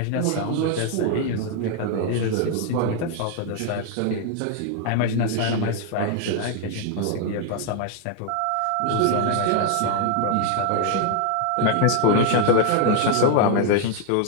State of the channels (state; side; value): different; both; correlation 0.00